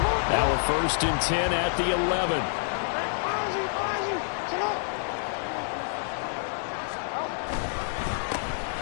Now a 1st and 10 at the 11.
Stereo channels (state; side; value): silent; right; 60 dB below the other